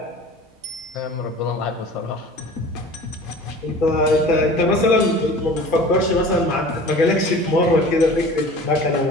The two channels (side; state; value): both; normal; correlation 0.42